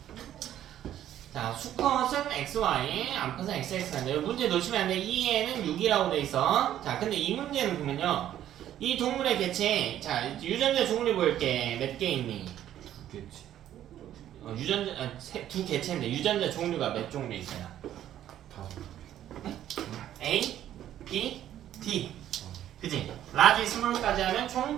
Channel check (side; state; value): left; quieter; 11.6 dB